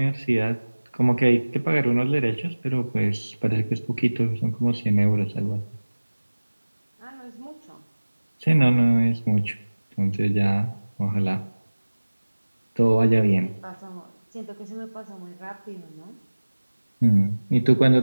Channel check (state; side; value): inverted; both; correlation -1.00